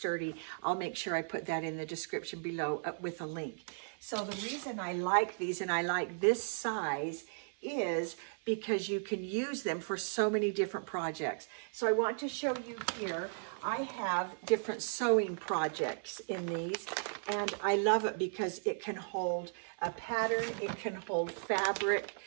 I'll make sure I put that in the description below with a link. So the reason I like these and I like this size is because you can use them for so many different projects. So I want to show you here, I have different sewing projects in these, and I love it because it can hold a pattern, it can hold fabric.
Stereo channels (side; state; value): left; silent; 54 dB below the other